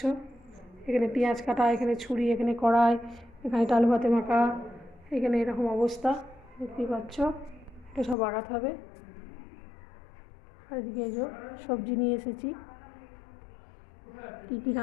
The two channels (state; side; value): drops out; right; at 8.2 s